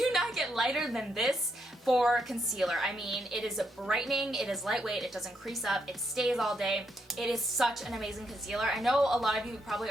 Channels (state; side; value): normal; both; correlation 0.78